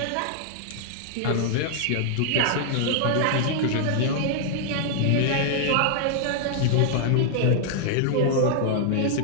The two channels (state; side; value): different; both; correlation -0.01